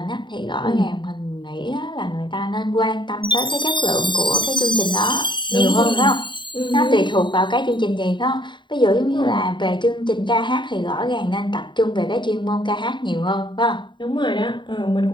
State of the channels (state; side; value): late; right; 0.23 ms